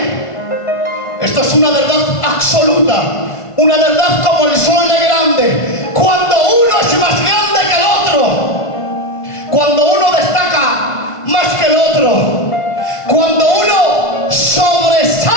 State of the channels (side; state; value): right; late; 1.5 ms